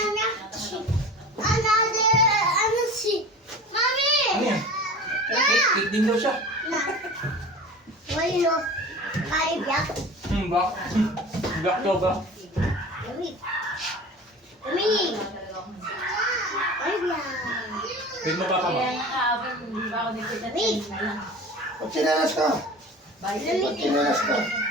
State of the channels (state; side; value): normal; both; correlation 0.37